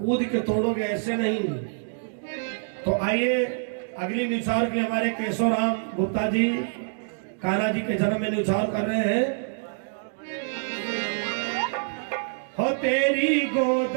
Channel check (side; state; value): left; silent; digital silence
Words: के तोड़ोगे, ऐसे नहीं। तो आइए अगली निछावर के लिए हमारे केशव राम गुप्ता जी कान्हा जी के जन्म में निछावर कर रहे हैं। हो तेरी गोद